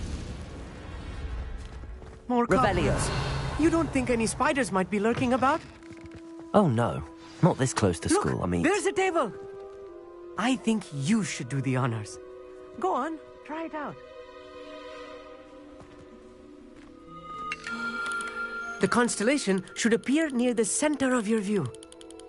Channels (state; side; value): identical; both; correlation 1.00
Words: More Revelio. cobwebs. You don't think any spiders might be lurking about? Oh no, not this close to school, I mean... There's a table! I think you should do the honors. Go on, try it out. The constellation should appear near the center of your view.